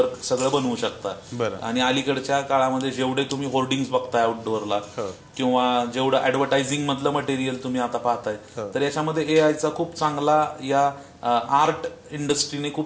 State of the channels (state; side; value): identical; both; correlation 1.00